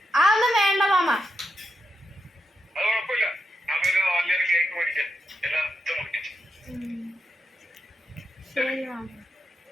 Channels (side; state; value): both; normal; correlation 0.85